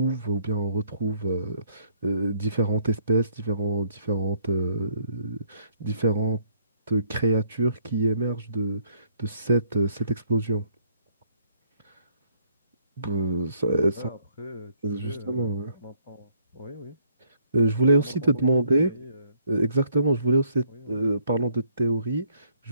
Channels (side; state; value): both; inverted; correlation -0.67